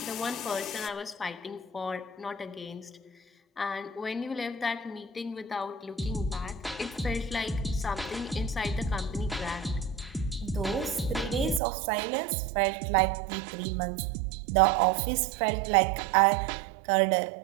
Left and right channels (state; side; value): drops out; left; at 11.6 s